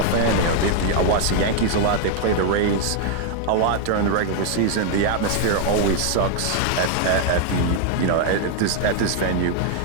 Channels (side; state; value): both; different; correlation 0.00